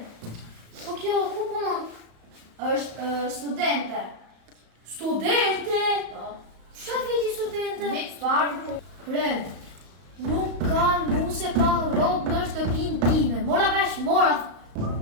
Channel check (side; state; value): left; late; 35 ms